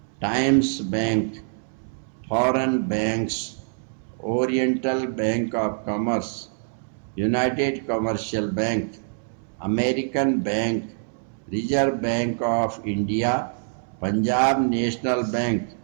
Times Bank. Foreign banks. Oriental Bank of Commerce. United Commercial Bank. American Bank. Reserve Bank of India. Punjab National Bank.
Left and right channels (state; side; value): silent; left; 62 dB below the other